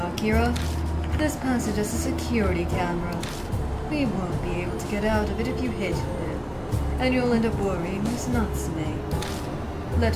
This passage has a security camera. We won't be able to get out of it if you hit it. And you'll end up worrying Miss Natsume.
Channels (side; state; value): both; identical; correlation 1.00